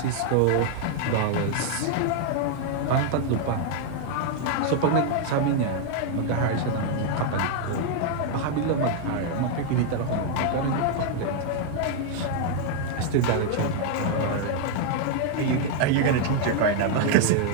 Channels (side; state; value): both; different; correlation 0.00